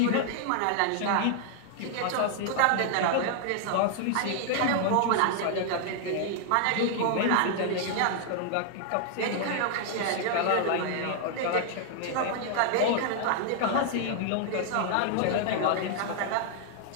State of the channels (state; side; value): different; both; correlation 0.00